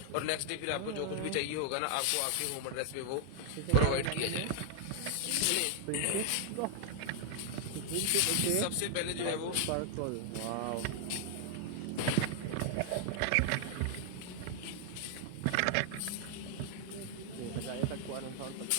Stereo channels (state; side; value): different; both; correlation 0.00